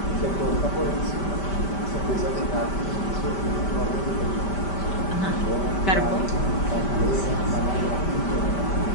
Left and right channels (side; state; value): right; late; 5.1 ms